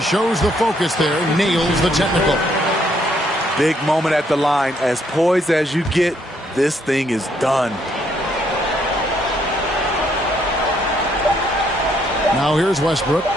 the focus there. Nails the technical. Big moment at the line. As poised as you get, this thing is done. Now here's Westbrook.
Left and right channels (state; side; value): normal; both; correlation 0.70